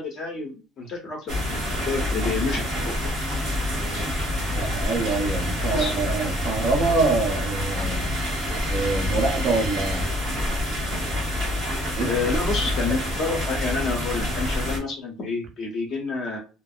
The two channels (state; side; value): normal; both; correlation 0.60